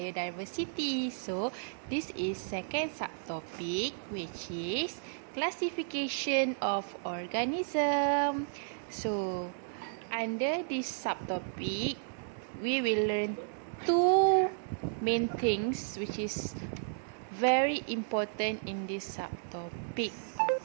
So this is second subtopic, which is classification of organism. So under this subtopic we will learn two main things which is very important in this subtopic.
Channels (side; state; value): left; silent; 55 dB below the other